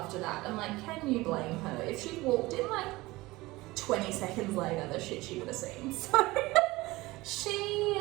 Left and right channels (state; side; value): quieter; left; 20.4 dB